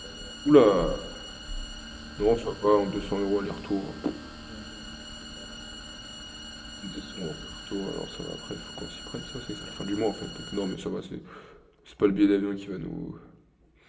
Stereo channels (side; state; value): both; identical; correlation 1.00